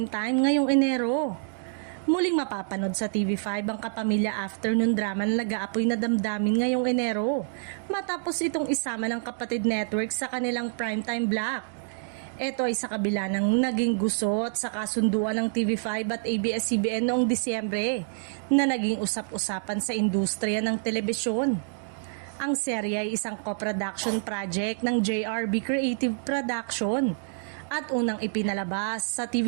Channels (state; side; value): silent; left; digital silence